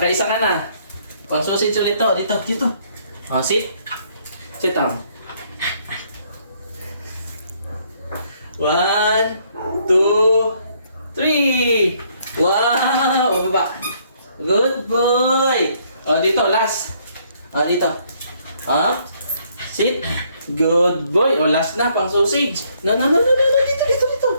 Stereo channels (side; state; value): both; inverted; correlation -0.67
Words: ka na. Pang sausage ulit to. Dito. Oh, sit. Sit down. 1, 2, 3. Wow! Bababa. Good boy! Oh, dito. Last. Oh, dito. Up. Sit. Good boy. Oh, last na. Pang sausage. No. Dito.